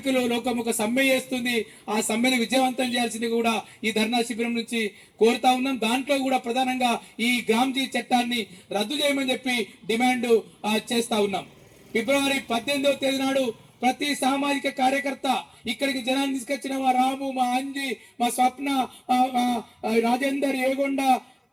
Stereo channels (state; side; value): identical; both; correlation 1.00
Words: లోకం ఒక సమ్మె చేస్తుంది. ఆ సమ్మెను విజయవంతం చేయాల్సింది కూడా ఈ ధర్నా శిబిరం నుంచి కోరుతా ఉన్నాం. దాంట్లో కూడా ప్రధానంగా ఈ గ్రామ్జీ చట్టాన్ని రద్దు చేయమని చెప్పి డిమాండ్ చేస్తా ఉన్నాం. ఫిబ్రవరి 18వ తేదీ నాడు ప్రతి సామాజిక కార్యకర్త ఇక్కడికి జనాన్ని తీసుకొచ్చిన మా రాము, మా అంజి, మా స్వప్న, రాజేందర్, ఏగొండ,